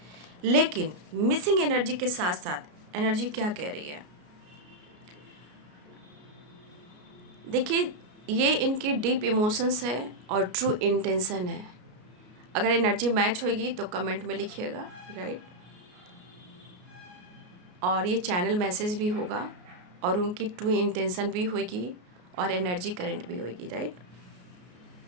लेकिन मिसिंग एनर्जी के साथ साथ एनर्जी क्या कह रही है, देखिए, ये इनकी डीप इमोशंस है और ट्रू इंटेंशन है। अगर एनर्जी मैच होगी तो कमेंट में लिखिएगा, राइट। और ये चैनल मैसेज भी होगा और उनकी ट्रू इंटेंशन भी होगी और एनर्जी करंट भी होगी, राइट।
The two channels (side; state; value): left; late; 33 ms